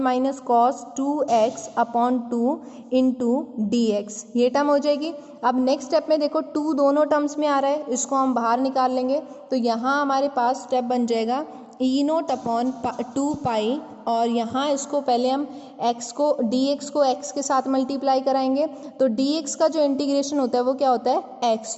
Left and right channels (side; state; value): both; identical; correlation 1.00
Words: minus cos 2x upon 2 into dx, ये टर्म हो जाएगी। अब नेक्स्ट स्टेप में देखो 2 दोनों टर्म्स में आ रहा है, इसको हम बाहर निकाल लेंगे, तो यहाँ हमारे पास स्टेप बन जाएगा ई नोट अपॉन 2 पाई, और यहाँ इसको पहले हम x को dx को x के साथ मल्टीप्लाई कराएंगे, तो dx का जो इंटीग्रेशन होता है वो क्या होता है x,